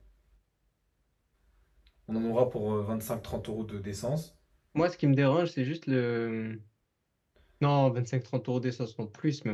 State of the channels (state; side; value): identical; both; correlation 1.00